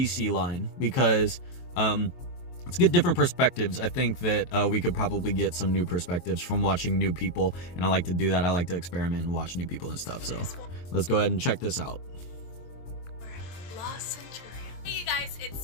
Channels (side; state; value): right; late; 23 ms